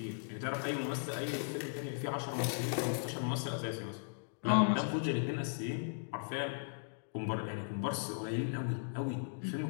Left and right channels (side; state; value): right; silent; digital silence